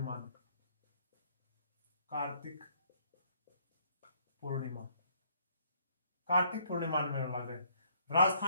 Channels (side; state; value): both; inverted; correlation -0.65